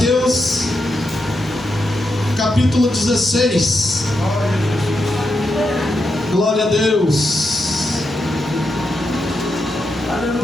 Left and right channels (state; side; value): normal; both; correlation 0.85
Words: capítulo 16. Glória a Deus.